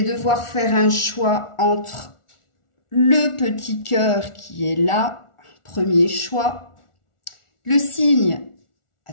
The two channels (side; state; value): right; late; 1.4 ms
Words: devoir faire un choix entre le petit cœur qui est là, premier choix, le signe,